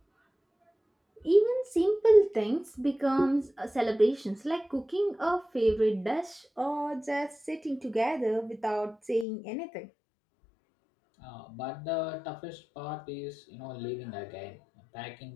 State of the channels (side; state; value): right; drops out; at 9.2 s